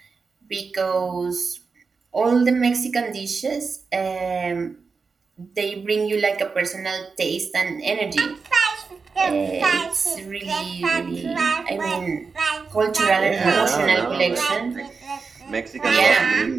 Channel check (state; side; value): quieter; left; 4.8 dB